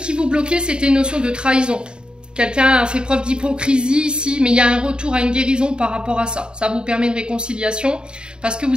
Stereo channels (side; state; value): left; late; 0.050 ms